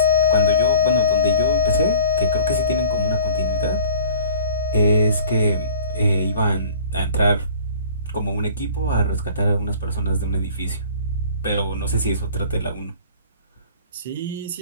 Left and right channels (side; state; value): both; inverted; correlation -0.48